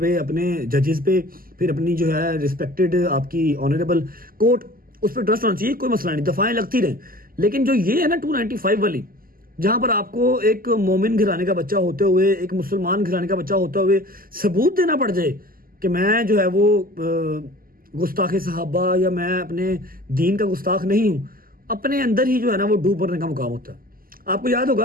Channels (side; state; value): left; late; 0.42 ms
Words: अपने जजेस पे, फिर अपनी जो है रिस्पेक्टेड आपकी ऑनरेबल कोर्ट, उस पर ट्रस्ट होना चाहिए, कोई मसला नहीं, दफाएं लगती रहें। लेकिन जो ये है ना 295 वाली, जहां पर आपको एक मोमिन घराने का बच्चा होते हुए, एक मुसलमान घराने का बच्चा होते हुए सबूत देना पड़ जाए कि मैं जो है वो गुस्ताख सहाबा या मैं अपने दीन का गुस्ताख नहीं हूं, अपने अंदर ही जो है ना वो डूब पड़ने का मुकाम होता है। आपको याद